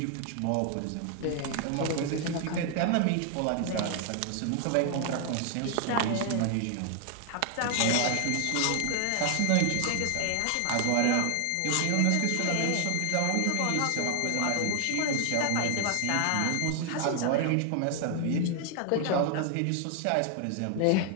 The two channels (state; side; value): different; both; correlation 0.00